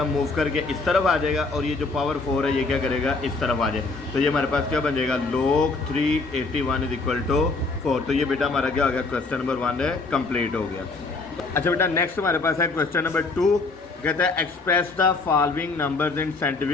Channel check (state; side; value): quieter; right; 3.7 dB